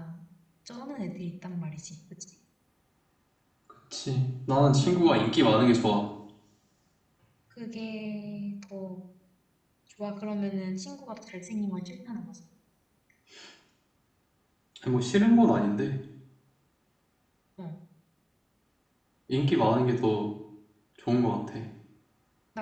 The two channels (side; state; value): both; identical; correlation 1.00